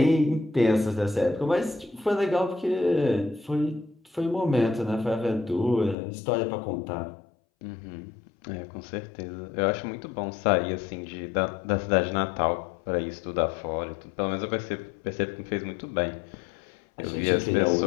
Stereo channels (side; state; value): right; drops out; at 6.0 s